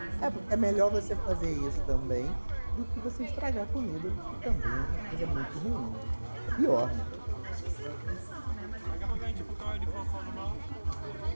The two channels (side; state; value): both; inverted; correlation -1.00